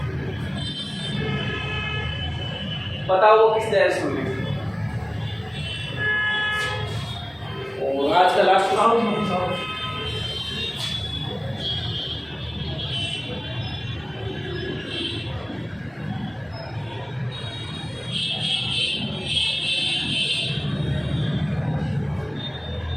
बताओ वो किस डायरेक्शन में? और आज का लास्ट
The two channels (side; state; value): left; noise; hum, 30 dB below the sound